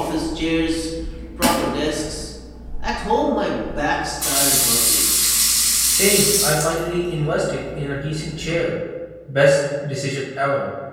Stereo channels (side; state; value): both; identical; correlation 1.00